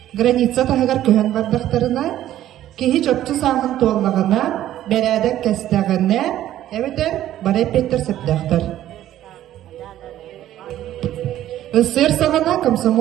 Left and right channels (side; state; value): left; quieter; 12.8 dB